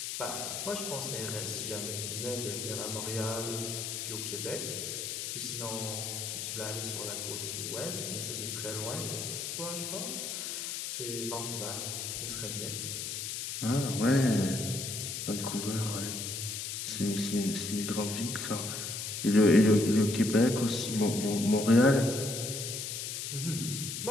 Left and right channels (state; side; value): noise; left; hiss, 4 dB below the sound